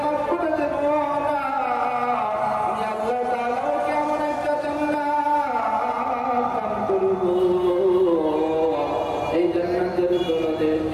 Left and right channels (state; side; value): identical; both; correlation 1.00